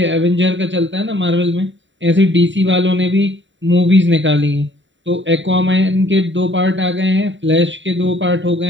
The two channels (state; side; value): late; left; 0.54 ms